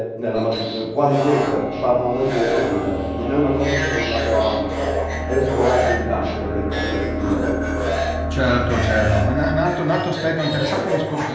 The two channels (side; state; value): both; identical; correlation 1.00